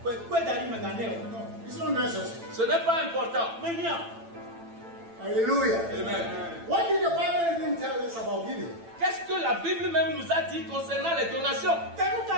not necessary. Ce n'est pas important. Hallelujah. Amen. What did the Bible even tell us about giving? Qu'est-ce que la Bible même nous a dit concernant les donations?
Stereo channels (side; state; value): left; late; 8.9 ms